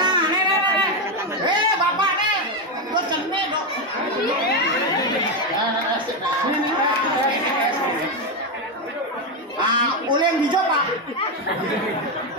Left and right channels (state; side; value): normal; both; correlation 0.08